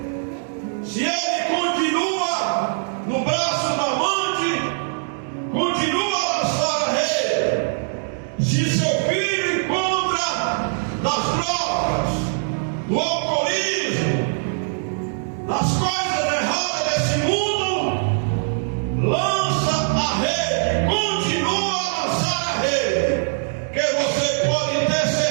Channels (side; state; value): left; silent; 64 dB below the other